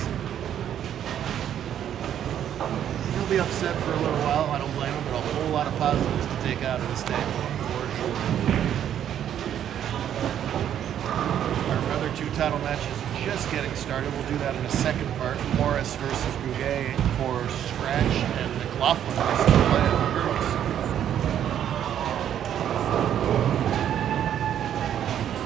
He'll be upset for a little while. I don't blame him, but a whole lot of positives to take out of this day for sure. Our other 2 title matches just getting started. We'll do that in a second part. Morris versus Bouguet for scratch, and McLaughlin versus Playa for girls.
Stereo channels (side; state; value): left; quieter; 10.1 dB